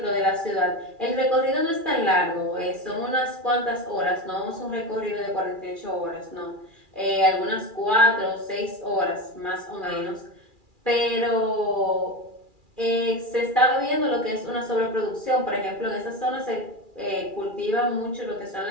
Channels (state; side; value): late; left; 2.4 ms